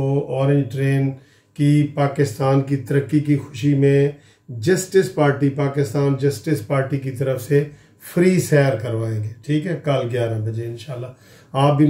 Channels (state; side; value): identical; both; correlation 1.00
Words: ऑरेंज ट्रेन की पाकिस्तान की तरक्की की खुशी में justice party, Pakistan justice party की तरफ से फ्री सैर करवाएंगे। ठीक है, कल 11 बजे इंशाल्लाह। आप भी